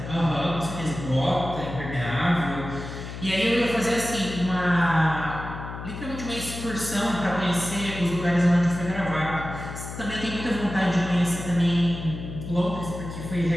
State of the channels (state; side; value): noise; left; hum, 9 dB below the sound